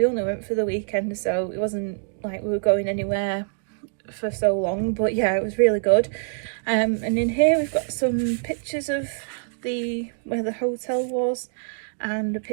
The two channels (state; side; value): silent; left; 62 dB below the other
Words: only went for the weekend, so it wasn't like we were going anywhere for so long, but yeah, it was really good. And in here we've got some pictures of where the hotel was, and a